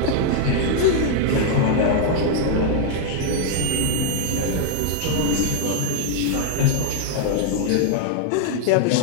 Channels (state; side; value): different; both; correlation -0.01